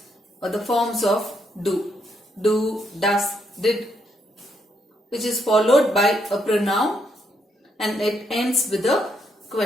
or the forms of do, does, did, which is followed by a pronoun and it ends with a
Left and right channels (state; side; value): normal; both; correlation 0.76